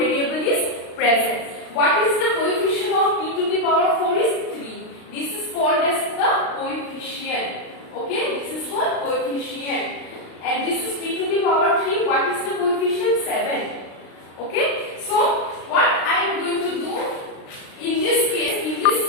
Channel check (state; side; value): late; right; 36 ms